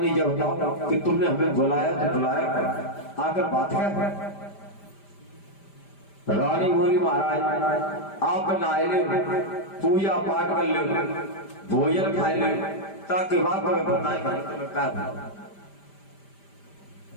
जब बताओ कि तुमने हमें बुलाया तो बुलाया आकर बात है। रानी बोली महाराज आप नहाए ले, पूजा पाठ कर ले, भोजन खाए ले, ताकि बात तुम्हें बताए क्या।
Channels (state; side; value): late; right; 5.0 ms